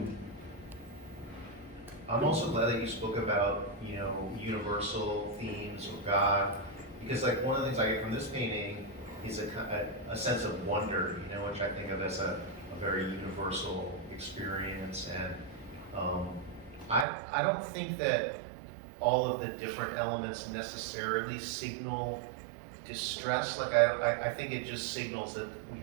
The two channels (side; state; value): left; drops out; at 17.1 s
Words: I'm also glad that you spoke about, universal themes of God, because like one of the things I get from this painting is a sense of wonder, which I think of as a very universal experience. And I don't think that all of the different elements necessarily signal distress. Like I think it just signals that we